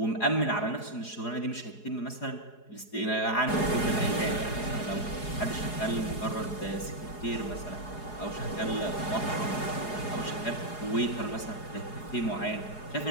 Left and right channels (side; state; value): right; late; 4.8 ms